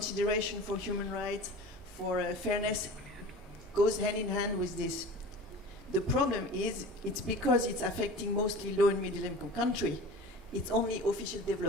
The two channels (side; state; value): both; normal; correlation 0.38